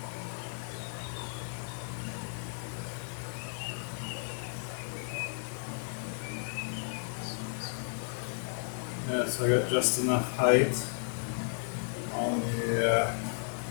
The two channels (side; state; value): right; silent; 55 dB below the other